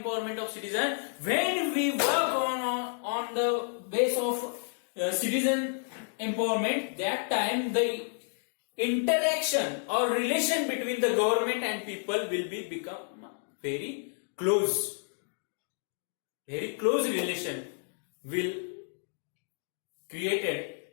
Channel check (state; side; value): silent; right; 57 dB below the other